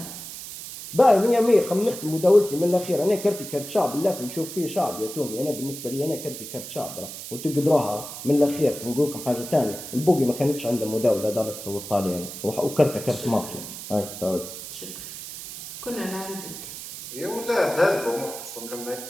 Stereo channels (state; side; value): noise; right; hiss, 10 dB below the sound